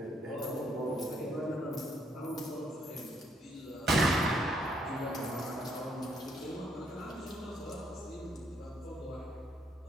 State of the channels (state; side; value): normal; both; correlation 0.71